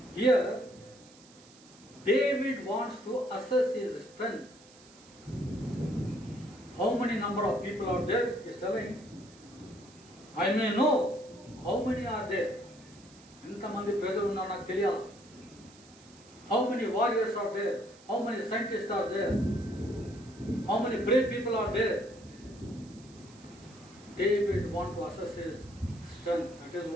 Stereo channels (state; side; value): noise; right; hiss, 24 dB below the sound